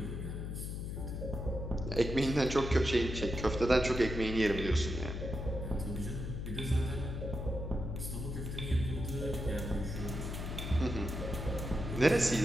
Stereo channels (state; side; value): noise; left; hum, 5 dB below the sound